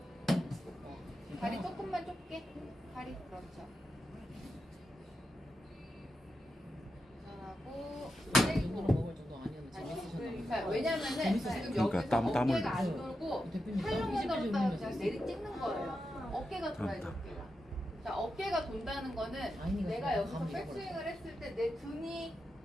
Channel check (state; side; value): normal; both; correlation 0.88